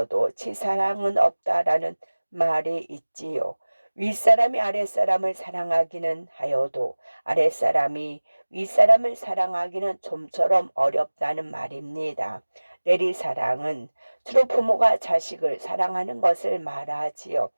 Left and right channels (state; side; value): inverted; both; correlation -1.00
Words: 치사랑은 없다라는 말이 있지요. 윗사람이 아랫사람을 사랑하기는 하여도 아랫사람이 윗사람을 사랑하기는 좀처럼 어렵다는 말입니다. 내리사랑은 주로 부모가 자식을 사랑하는 것을 말하지요.